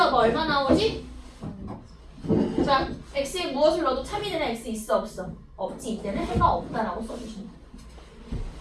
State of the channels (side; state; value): both; identical; correlation 1.00